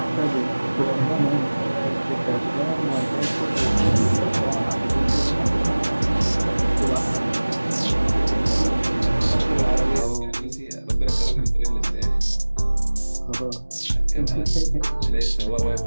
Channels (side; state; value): both; inverted; correlation -1.00